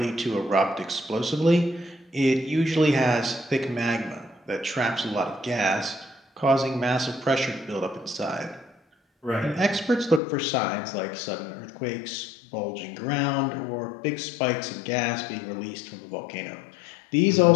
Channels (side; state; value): right; drops out; at 10.2 s